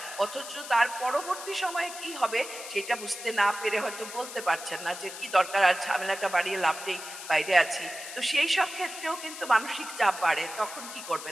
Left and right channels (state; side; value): noise; left; hiss, 11 dB below the sound